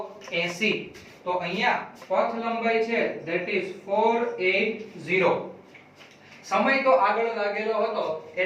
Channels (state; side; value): identical; both; correlation 1.00